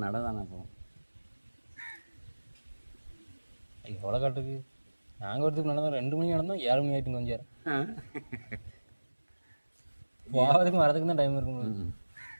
நட தானே போவோம். களக்காட்டுக்கு நாங்கள் வரதுக்கு நடந்தோம் 2 மணி நடந்தோம் 7 மணி ஆகிட்டு கொஞ்சம் போகிறதுக்கும் வரதுக்கு தான் டைம் இருக்கும்.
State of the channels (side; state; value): both; inverted; correlation -1.00